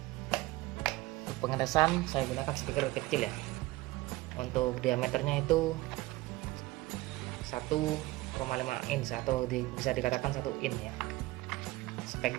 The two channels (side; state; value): left; quieter; 19.3 dB